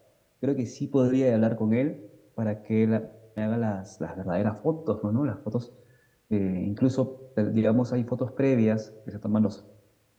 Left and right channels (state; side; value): identical; both; correlation 1.00